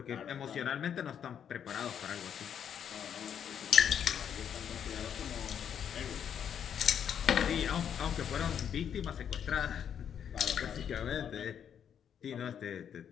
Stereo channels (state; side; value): quieter; right; 8.5 dB